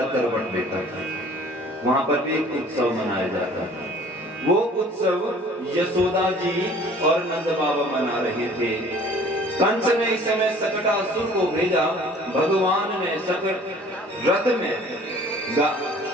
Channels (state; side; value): normal; both; correlation 0.51